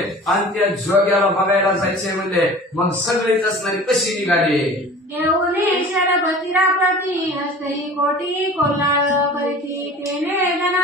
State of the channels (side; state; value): both; normal; correlation 0.42